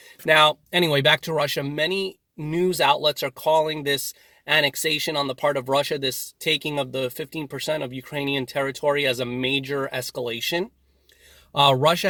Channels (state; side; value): identical; both; correlation 1.00